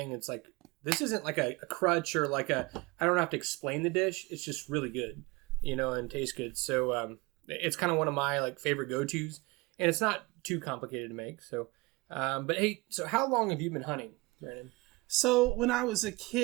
It's like, this isn't like a crutch or like I don't have to explain the dish. It's just really good, and tastes good. So it's kind of one of my like favorite go-tos, and it's not too complicated to make. So, but hey, so how long have you been hunting, Brandon? So when I was a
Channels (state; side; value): quieter; left; 24.1 dB